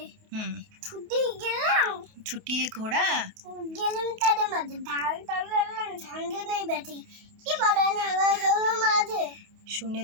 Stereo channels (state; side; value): late; left; 28 ms